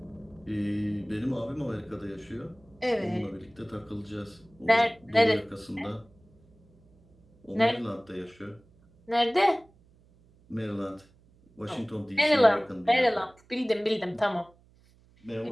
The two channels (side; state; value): right; noise; hum, 30 dB below the sound